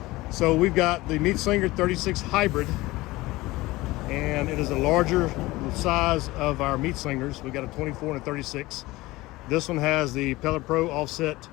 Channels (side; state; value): right; quieter; 19.7 dB